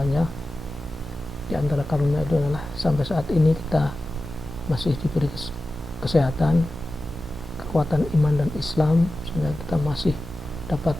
Di antara karunia itu adalah sampai saat ini kita masih diberi kesehatan, kekuatan iman dan Islam, sehingga kita masih dapat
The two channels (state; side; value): normal; both; correlation 0.94